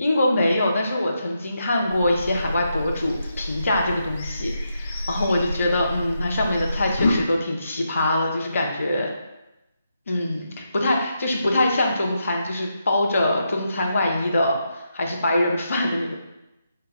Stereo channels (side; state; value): both; inverted; correlation -0.83